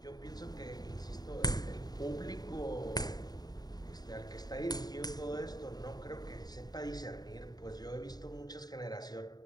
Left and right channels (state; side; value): late; right; 0.19 ms